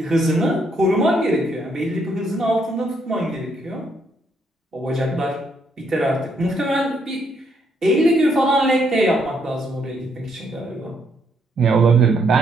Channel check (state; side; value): normal; both; correlation 0.73